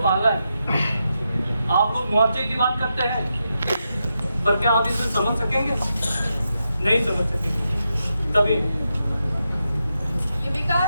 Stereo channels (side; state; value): both; inverted; correlation -0.86